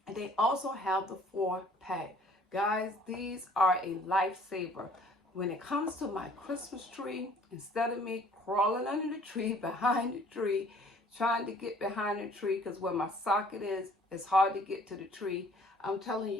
and they also have the 4-pack. Guys, these are a lifesaver. When it comes to my Christmas tree, instead of me crawling under the tree, behind the tree, trying to get behind the tree because where my socket is, it's hard to get to the tree, I'm telling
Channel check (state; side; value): normal; both; correlation 0.56